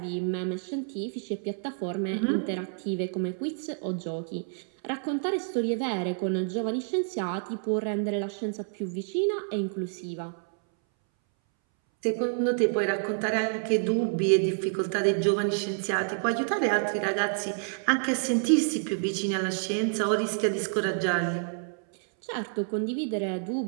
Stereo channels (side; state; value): left; silent; 59 dB below the other